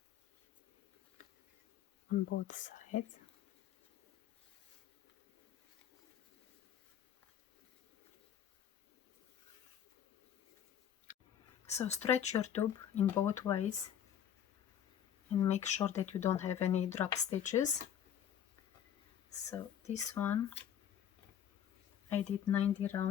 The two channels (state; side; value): quieter; right; 9.5 dB